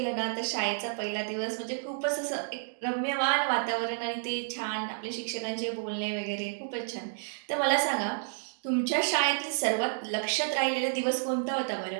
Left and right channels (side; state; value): left; silent; digital silence